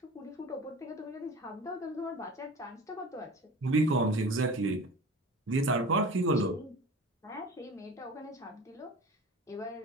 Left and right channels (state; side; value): normal; both; correlation 0.37